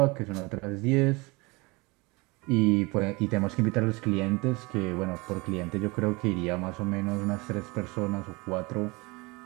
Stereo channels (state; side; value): quieter; left; 25.4 dB